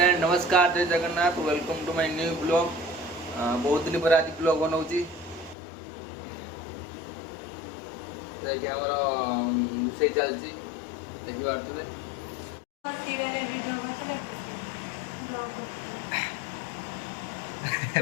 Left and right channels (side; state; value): right; drops out; at 5.6 s